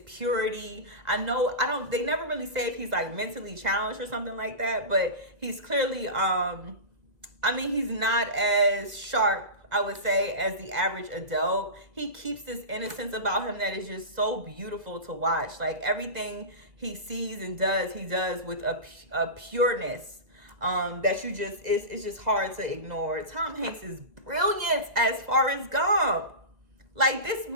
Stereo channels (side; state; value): left; late; 1.9 ms